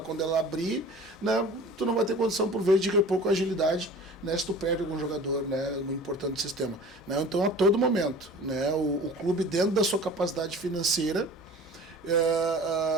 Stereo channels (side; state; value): both; normal; correlation 0.42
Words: ela abrir, né, tu não vai ter condição, por vezes, de repor com agilidade, né, se tu perde algum jogador, né, muito importante do sistema, né? Então, a todo momento, né, o clube, dentro da sua capacidade financeira,